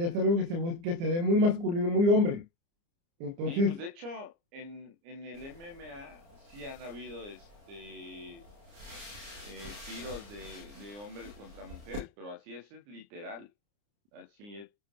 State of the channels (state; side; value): late; left; 29 ms